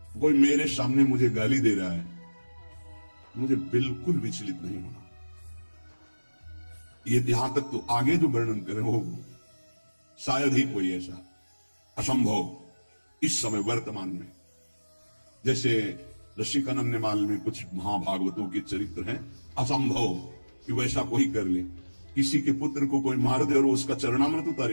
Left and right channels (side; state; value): both; inverted; correlation -1.00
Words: कोई मेरे सामने मुझे गाली दे रहा है, मुझे बिल्कुल विचलित नहीं होना। ये यहां तक तो आगे जो वर्णन करें वो शायद ही कोई ऐसा असंभव इस समय वर्तमान में। जैसे रसिकानंदमाल में कुछ महाभागवतों के चरित्र हैं, असंभव कि वैसा कोई कर ले। किसी के पुत्र को कोई मार दे और उसका चरणामृत